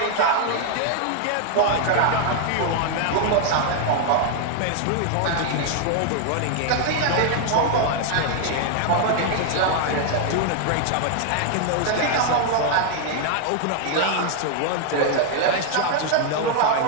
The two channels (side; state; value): both; different; correlation 0.00